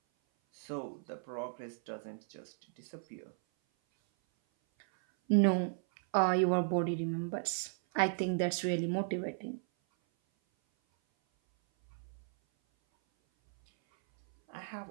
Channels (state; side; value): silent; left; 54 dB below the other